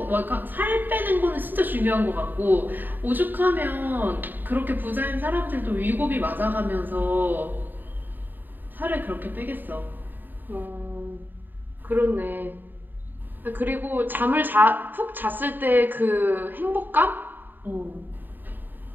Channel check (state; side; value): late; left; 0.091 ms